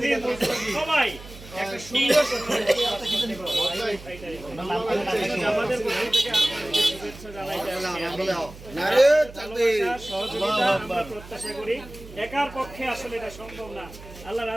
সবাই প্রত্যাশা করি। একার পক্ষে আসলে এটা সম্ভব না। আল্লাহ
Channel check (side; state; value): right; noise; hum, 17 dB below the sound